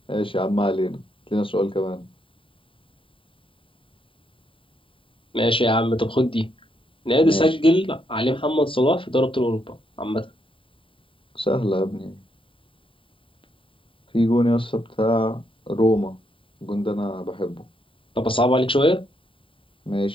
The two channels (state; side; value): late; right; 0.25 ms